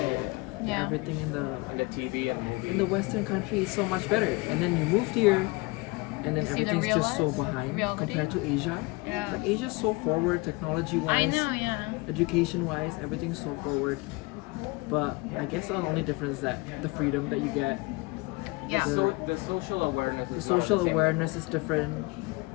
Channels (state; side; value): quieter; right; 25.1 dB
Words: Yeah. Everything in the TV and movies. in the Western country is so much better. And then you moved here, and then See the everything's just so real behind reality? compared to Asia. Yeah. Like Asia's so forward, I technology-wise, know, yeah. education-wise, everything's so forward. But I guess the only difference is that the freedom that you get, Yeah. So the social awareness. the is not social the same. awareness is different.